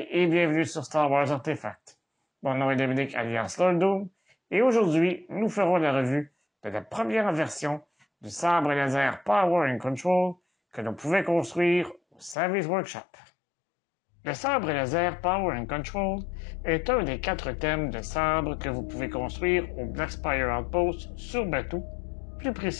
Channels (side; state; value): right; drops out; at 12.4 s